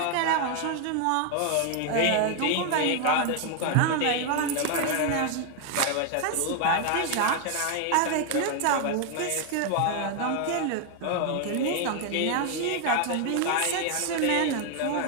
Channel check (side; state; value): both; different; correlation 0.00